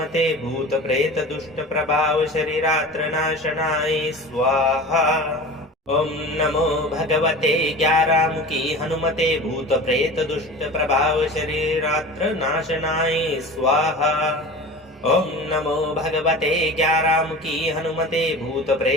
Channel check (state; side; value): normal; both; correlation 0.35